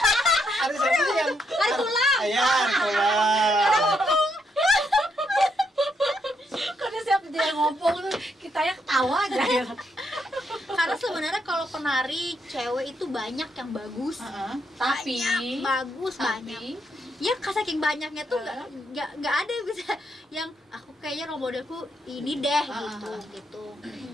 tulang. Iya, hari tulang. setiap dia ngomong tuh kita ya ketawa aja ya. Karena sebenarnya kalau penari cewek itu banyak yang bagus. Tapi Banyak, bagus banyak. Ya saking banyaknya tuh nggak ada yang bisa yang aku kayaknya role modelku ini deh gitu.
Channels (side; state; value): both; normal; correlation 0.77